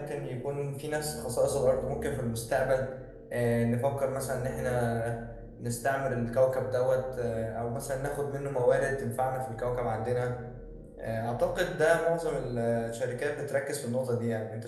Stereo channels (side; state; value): both; identical; correlation 1.00